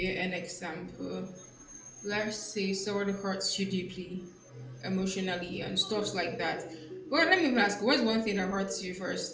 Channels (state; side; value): identical; both; correlation 1.00